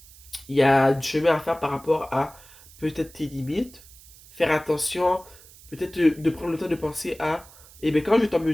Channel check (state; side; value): noise; right; hiss, 22 dB below the sound